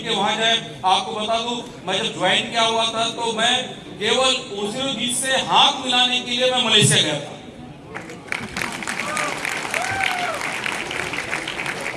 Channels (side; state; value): both; identical; correlation 1.00